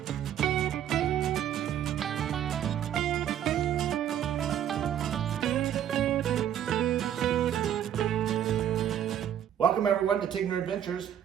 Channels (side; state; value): left; quieter; 10.2 dB